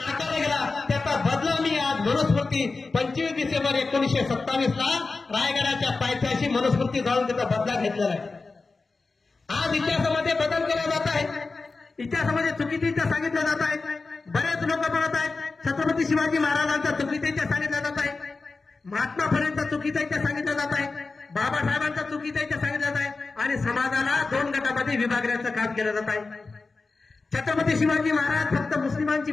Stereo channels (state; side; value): quieter; right; 3.9 dB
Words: गेला त्याचा बदला मी आज मनुस्मृती 25 डिसेंबर 1927 ला रायगडाच्या पायथ्याशी मनुस्मृती जाऊन त्याचा बदला घेतलेला आहे. आज इतिहासामध्ये बदल केला जात आहे. इतिहासामध्ये चुकीचे इतिहास सांगितला जात आहे. बरेच लोक म्हणत आहेत छत्रपती शिवाजी महाराजांचा चुकीचा इतिहास सांगितला जात आहे, महात्मा फुलेंचा चुकीचा इतिहास सांगितला जात आहे, बाबासाहेबांचा चुकीचा इतिहास सांगितला जात आहे आणि समाजाला 2 गटामध्ये विभागण्याचं काम केलं जात आहे. छत्रपती शिवाजी महाराज फक्त मुस्लिमांची